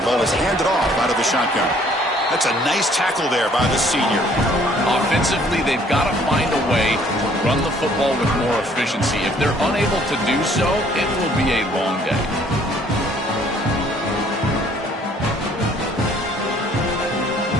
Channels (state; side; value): normal; both; correlation 0.60